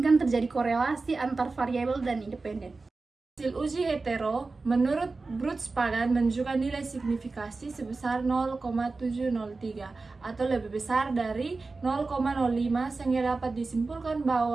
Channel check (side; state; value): left; quieter; 3.8 dB